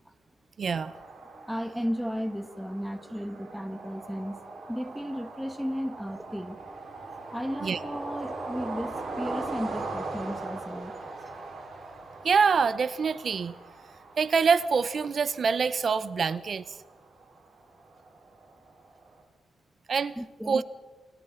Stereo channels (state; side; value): quieter; left; 4.0 dB